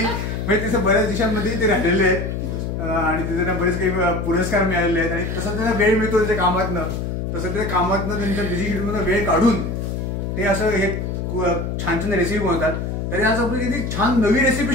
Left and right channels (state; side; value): noise; left; hum, 3 dB below the sound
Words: म्हणजे बऱ्याच देशांमध्ये ते राहिलेले आहेत आणि तिथे त्यांना बरेच काही पुरस्कार मिळालेले आहेत आणि तसं त्यांना वेळ मिळतो त्यांच्या कामातनं, तसं ते कामातनं त्यांच्या बिझी शेड्यूल मधून वेळ काढून ते असं हे छान छान रेसिपी बनवतात. तरी आज आपण किती छान नवी